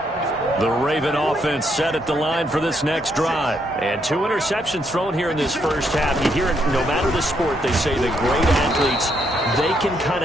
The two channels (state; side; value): normal; both; correlation 0.75